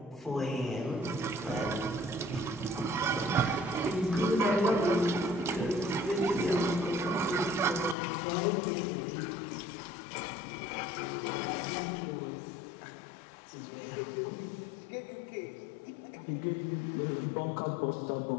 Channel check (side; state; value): right; drops out; at 8.0 s